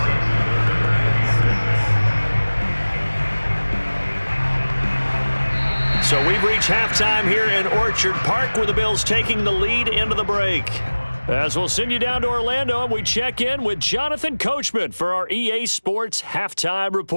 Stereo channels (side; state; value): both; inverted; correlation -1.00